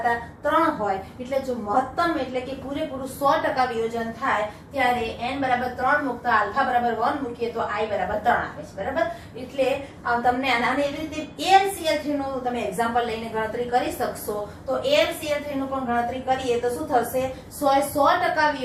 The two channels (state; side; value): identical; both; correlation 1.00